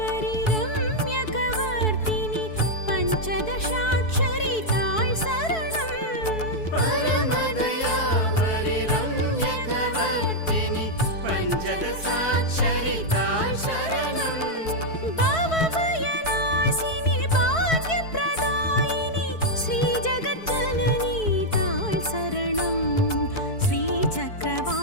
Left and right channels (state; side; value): late; right; 4.6 ms